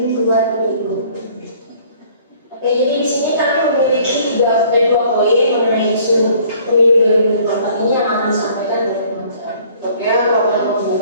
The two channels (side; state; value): both; inverted; correlation -0.56